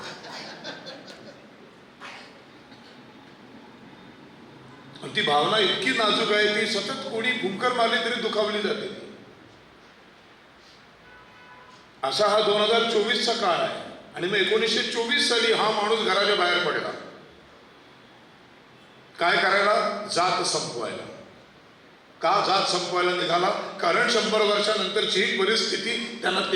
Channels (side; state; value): both; identical; correlation 1.00